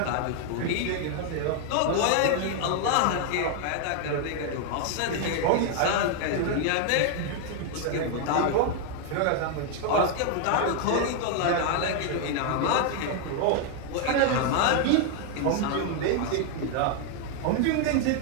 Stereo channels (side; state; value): both; different; correlation 0.00